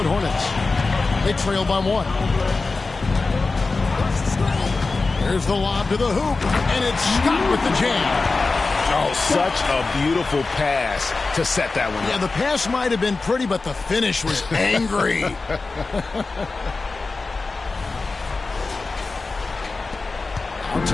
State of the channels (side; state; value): right; quieter; 3.8 dB